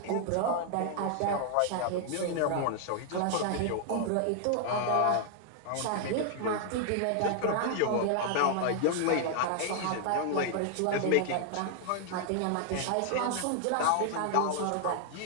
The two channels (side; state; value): both; different; correlation 0.00